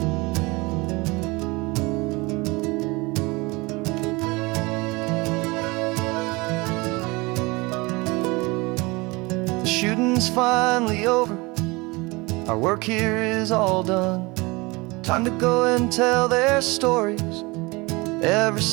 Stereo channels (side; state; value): left; quieter; 24.7 dB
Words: The shooting's finally over, our work here is all done. Time to go and tell their stories, every